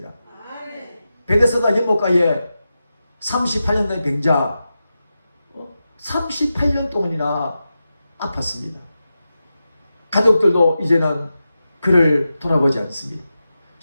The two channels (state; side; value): inverted; both; correlation -0.91